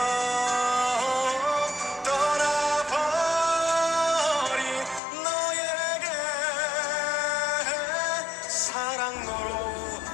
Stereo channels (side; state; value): right; drops out; at 5.0 s